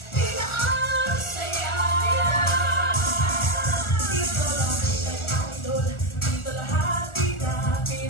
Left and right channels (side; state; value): right; late; 1.4 ms